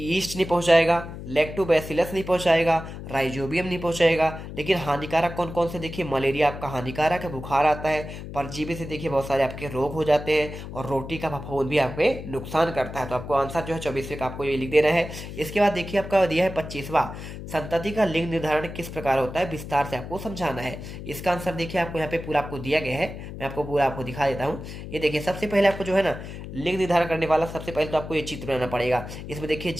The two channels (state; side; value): noise; left; hum, 10 dB below the sound